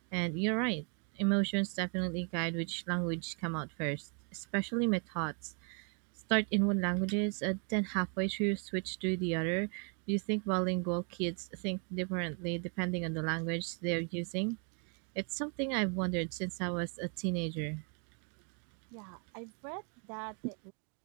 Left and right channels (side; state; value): left; quieter; 39.5 dB